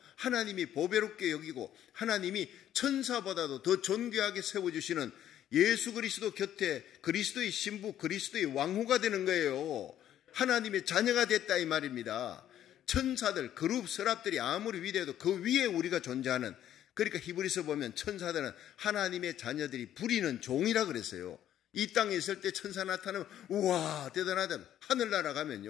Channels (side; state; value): right; quieter; 11.3 dB